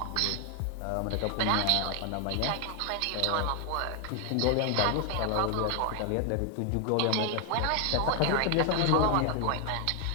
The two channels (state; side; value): different; both; correlation 0.00